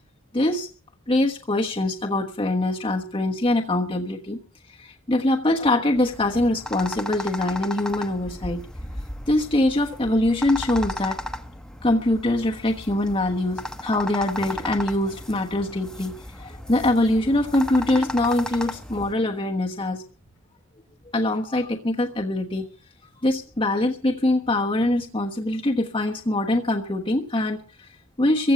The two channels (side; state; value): both; normal; correlation 0.68